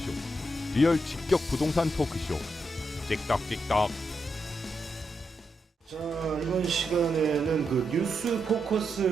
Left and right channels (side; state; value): both; normal; correlation 0.83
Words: 리얼 직격 부동산 토크쇼. 찍덕찍덕. 자, 이번 시간에는 그 뉴스